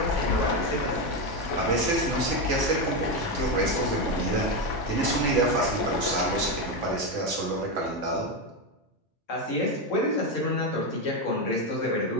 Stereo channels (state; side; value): normal; both; correlation 0.10